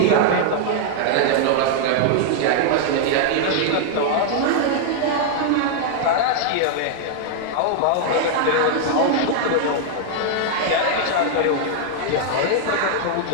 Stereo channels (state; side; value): different; both; correlation 0.00